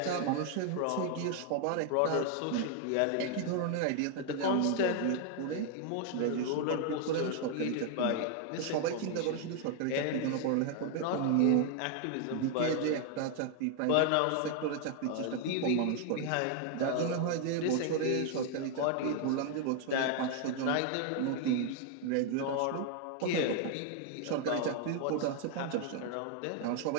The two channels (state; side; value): different; both; correlation 0.00